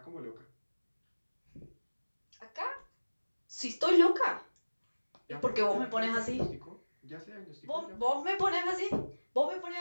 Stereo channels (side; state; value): both; inverted; correlation -1.00